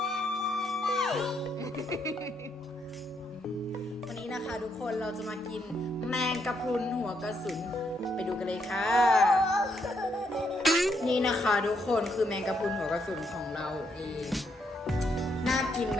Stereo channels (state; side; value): normal; both; correlation 0.76